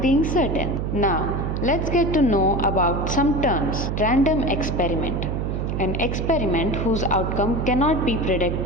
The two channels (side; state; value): right; noise; hum, 1 dB below the sound